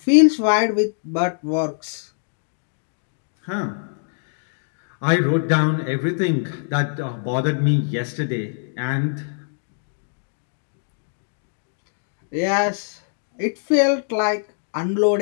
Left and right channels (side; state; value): right; silent; digital silence